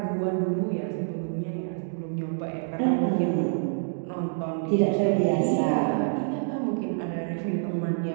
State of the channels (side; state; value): left; silent; digital silence